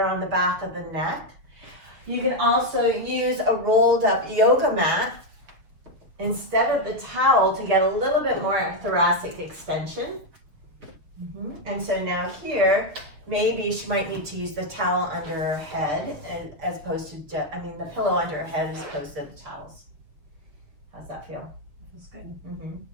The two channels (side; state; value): left; late; 6.6 ms